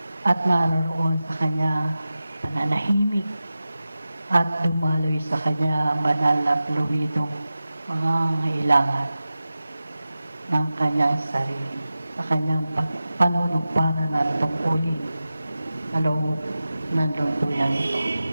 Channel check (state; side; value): inverted; both; correlation -0.94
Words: at naroon sa kanya pananahimik at dumaloy sa kanya ang banal na fluidong mga ngailangan ng kanyang sarili sa kanyang panunupara ng tungkulin sa loob ng lungtuyang ito.